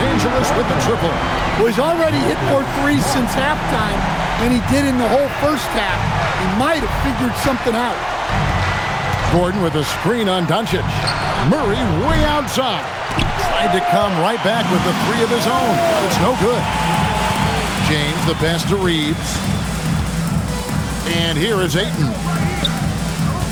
Angeles with the triple. Well, he's already hit 4 threes since halftime than he did in the whole first half. He might have figured something out. Gordon with a screen on Doncic. Murray way outside. Tried to come right back with the 3 of his own, but it's no good. James, the pass to Reeves. And here is Ayton.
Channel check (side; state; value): both; identical; correlation 1.00